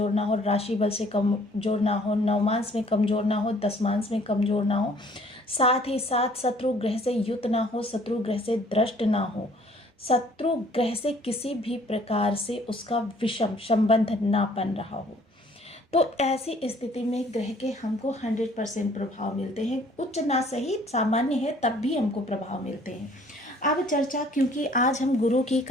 ना हो, राशि बल से कमजोर ना हो, नवमांश में कमजोर ना हो, दशमांश में कमजोर ना हो, साथ ही साथ शत्रु ग्रह से युत ना हो, शत्रु ग्रह से द्रष्ट ना हो, शत्रु ग्रह से किसी भी प्रकार से उसका विषम संबंध ना बन रहा हो। तो ऐसी स्थिति में ग्रह के हमको 100% प्रभाव मिलते हैं। उच्च ना सही सामान्य है तब भी हमको प्रभाव मिलते हैं। अब चर्चा क्योंकि आज हम गुरु की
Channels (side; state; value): both; normal; correlation 0.58